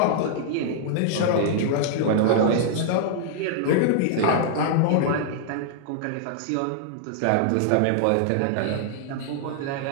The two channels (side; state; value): both; different; correlation -0.01